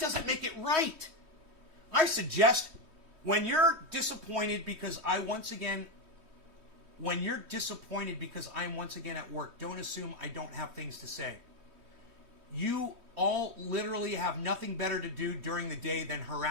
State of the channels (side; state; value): left; late; 3.2 ms